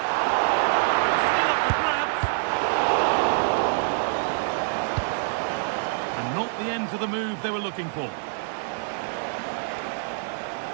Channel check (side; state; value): left; silent; digital silence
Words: Still up for grabs. And not the end to the move they were looking for.